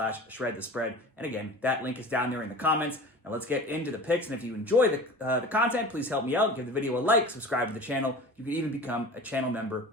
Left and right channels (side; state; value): both; normal; correlation 0.37